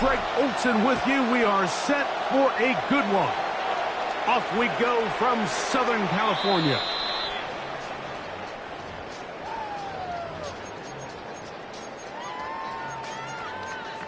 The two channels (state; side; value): identical; both; correlation 1.00